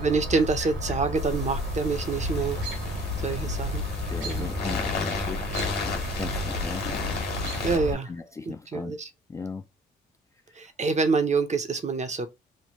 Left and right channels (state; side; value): normal; both; correlation 0.53